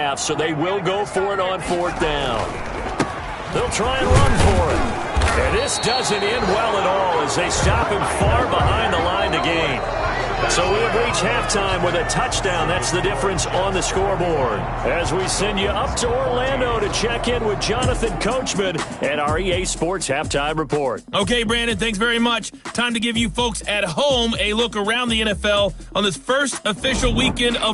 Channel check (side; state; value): both; identical; correlation 1.00